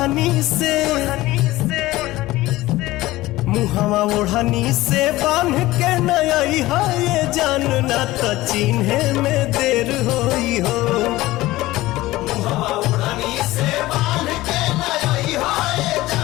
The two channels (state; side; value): quieter; right; 17.8 dB